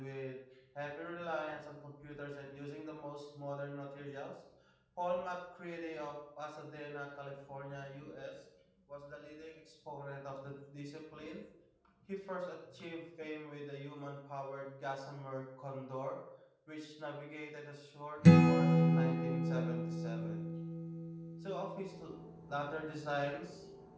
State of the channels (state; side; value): identical; both; correlation 1.00